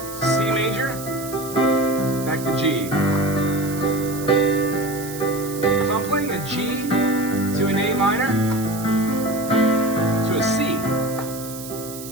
C major, back to G. If I'm playing a G to an A minor to a C,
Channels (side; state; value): right; noise; hiss, 12 dB below the sound